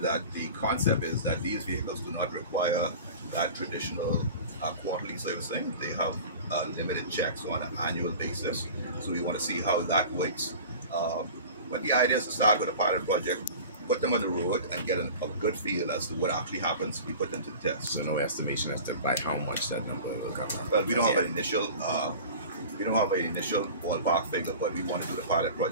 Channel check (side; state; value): both; inverted; correlation -0.37